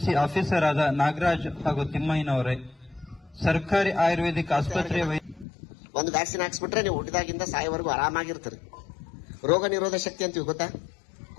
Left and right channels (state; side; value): drops out; right; at 5.5 s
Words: ಆಫೀಸರ್ ಆದ ನಾಗರಾಜ್ ಹಾಗೂ ತಿಮ್ಮಯ್ಯನವರೇ, ಸರ್ಕಾರಿ ಆಯುರ್ವೇದಿಕ್ ಆಸ್ಪತ್ರೆಯ ಒಂದು ವ್ಯಾಕ್ಸಿನ್ ಹಾಕ್ಸ್ಬಿಟ್ರೆ ನೀವು ಹುಟ್ಟಿದಾಗಿಂದ ಸಾಯೋವರೆಗೂ ಆರಾಮಾಗಿರ್ತೀರಿ. ರೋಗ ನಿರೋಧ ಶಕ್ತಿ ಅಂತೀವಿ ಗೊತ್ತಾ?